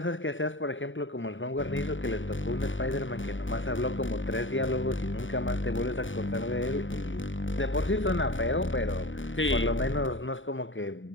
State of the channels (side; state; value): right; late; 0.56 ms